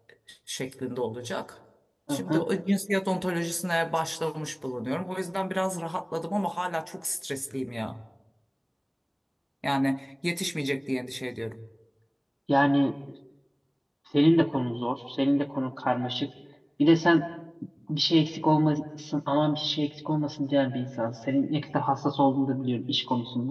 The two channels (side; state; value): both; identical; correlation 1.00